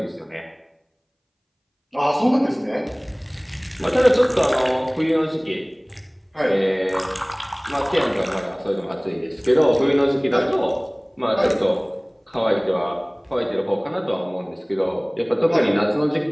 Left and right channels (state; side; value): identical; both; correlation 1.00